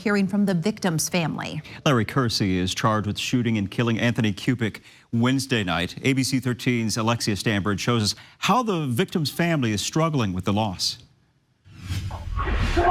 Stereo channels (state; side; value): identical; both; correlation 1.00